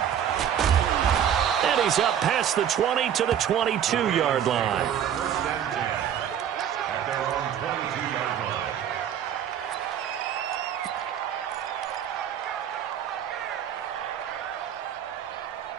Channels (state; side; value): quieter; left; 9.4 dB